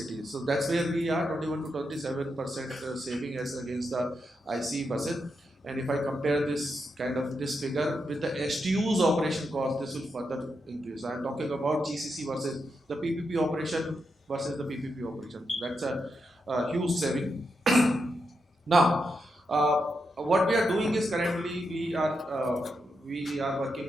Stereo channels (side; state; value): both; normal; correlation 0.84